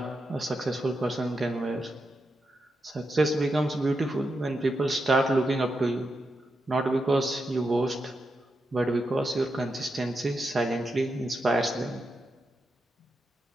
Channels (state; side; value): normal; both; correlation 0.86